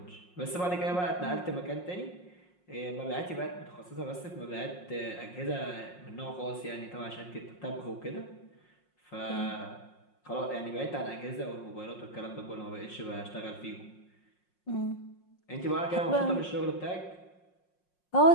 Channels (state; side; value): late; right; 5.5 ms